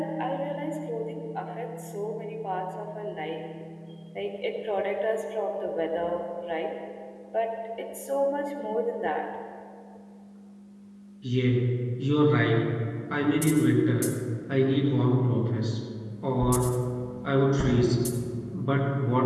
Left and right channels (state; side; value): identical; both; correlation 1.00